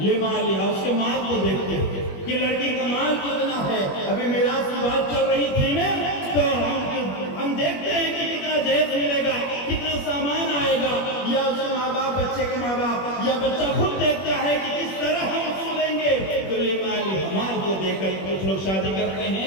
اس کے مال کو دیکھتے ہیں کہ لڑکی کا مال کتنا ہے. ابھی میراث کی بات چل رہی تھی نا، تو ہم دیکھتے ہیں کہ کتنا جہیز ملے گا، کتنا سامان آئے گا، یا اس کے ماں باپ، بچے کے ماں باپ، یا بچہ خود دیکھتا ہے کہ کس طرح ہم سولیں گے. تو لمالها، مال کو دیکھ کر کچھ لوگ شادی کرتے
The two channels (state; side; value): late; right; 21 ms